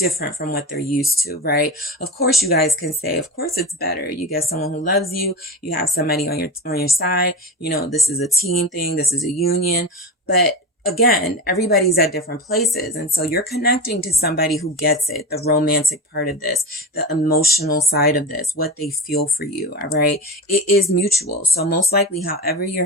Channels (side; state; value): both; normal; correlation 0.25